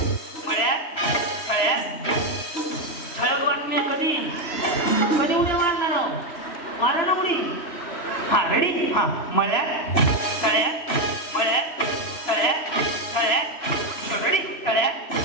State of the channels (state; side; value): late; right; 3.0 ms